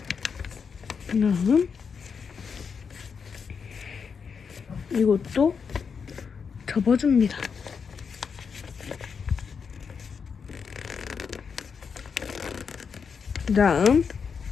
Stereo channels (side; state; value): right; quieter; 6.1 dB